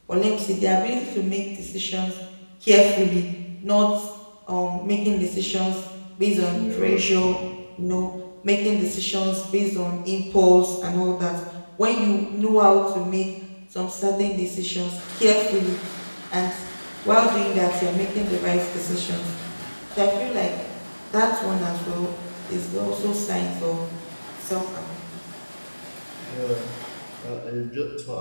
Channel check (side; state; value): both; inverted; correlation -1.00